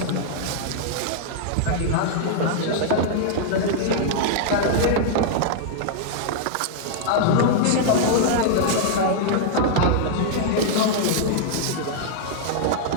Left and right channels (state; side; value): different; both; correlation -0.01